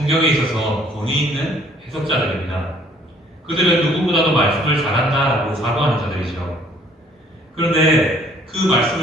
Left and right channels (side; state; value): both; normal; correlation 0.60